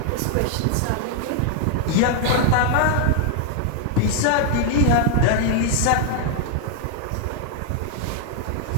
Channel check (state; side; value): different; both; correlation 0.00